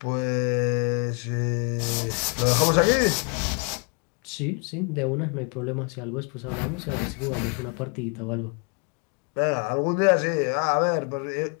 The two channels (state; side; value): quieter; right; 37.5 dB